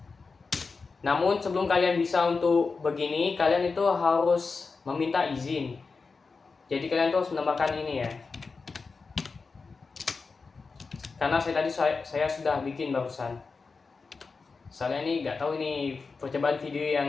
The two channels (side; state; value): right; quieter; 4.5 dB